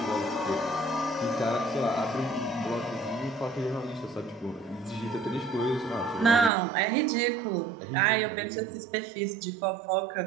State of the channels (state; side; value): drops out; left; at 6.5 s